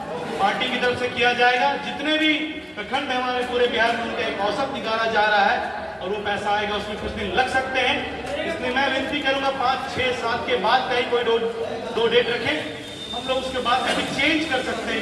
पार्टी की तरफ से किया जाएगा। जितने भी प्रखंड हमारे पूरे बिहार में उनका एक औसत निकाला जा रहा है और वो पैसा आएगा, उसमें कुछ दिन लग सकते हैं। इसलिए मैं विनती करूंगा 5, 6, 7 के बाद कहीं कोई 2 डेट रखें। हम लोग उसके बाद में भी चेंज कर सकते हैं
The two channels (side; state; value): both; identical; correlation 1.00